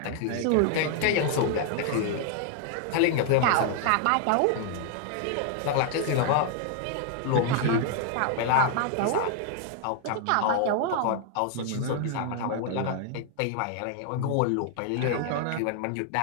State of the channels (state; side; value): different; both; correlation 0.00